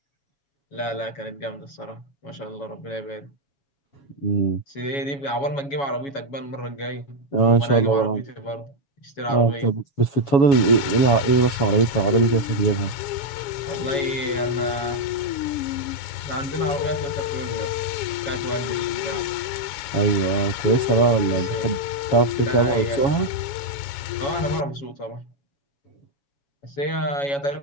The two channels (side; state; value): right; late; 7.2 ms